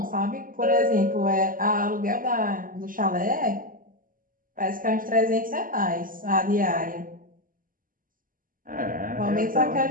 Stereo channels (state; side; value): late; left; 0.41 ms